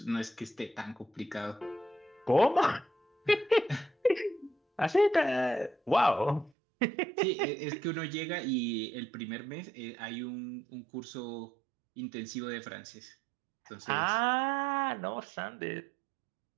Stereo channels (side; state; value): left; drops out; at 6.5 s